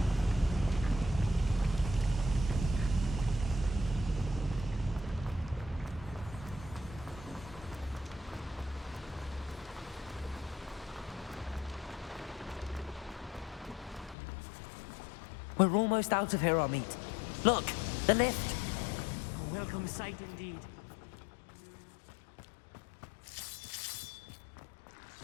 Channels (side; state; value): right; drops out; at 14.2 s